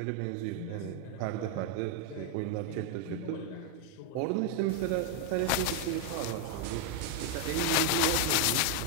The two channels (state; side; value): different; both; correlation 0.01